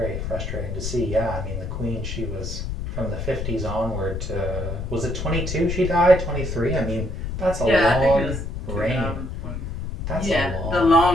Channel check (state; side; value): noise; left; rumble, 5 dB below the sound